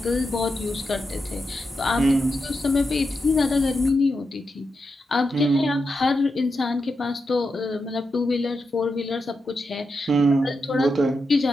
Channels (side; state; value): both; normal; correlation 0.87